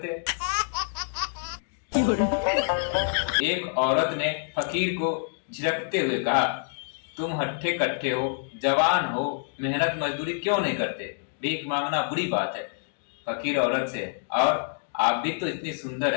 एक औरत ने फकीर को झिड़कते हुए कहा, तुम हट्ठे कट्ठे हो, जवान हो, मेहनत मजदूरी क्यों नहीं करते? भीख मांगना बुरी बात है। फकीर औरत से, और आप भी तो इतनी सुंदर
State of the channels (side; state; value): right; silent; digital silence